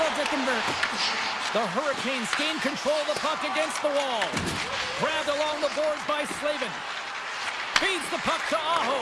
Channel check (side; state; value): both; identical; correlation 1.00